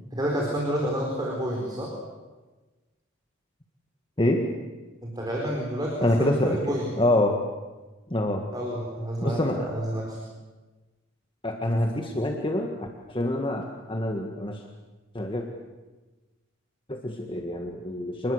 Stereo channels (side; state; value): both; normal; correlation 0.62